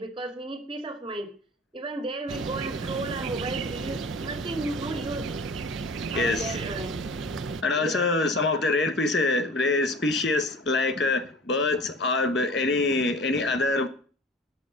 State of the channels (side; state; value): both; normal; correlation 0.41